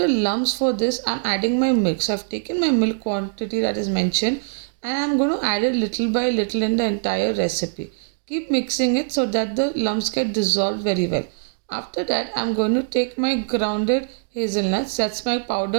lumps for this, I'm adding my milk. So I've taken my milk quantity that is mentioned, and I'm going to add it little by little in the entire recipe. Keep mixing it so that the lumps get dissolved very well. After that, I'm going to take my grounded hazelnuts, that's my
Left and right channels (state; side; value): silent; left; digital silence